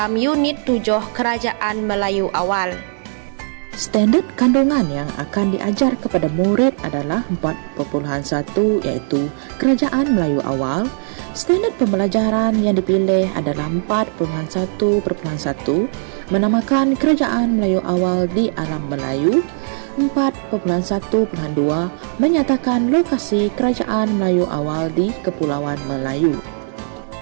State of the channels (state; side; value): silent; left; 67 dB below the other